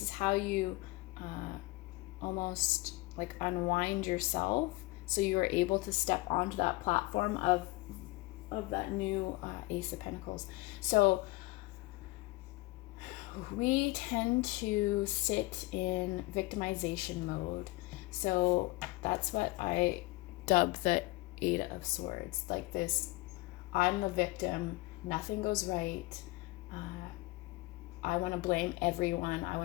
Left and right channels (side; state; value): right; quieter; 21.3 dB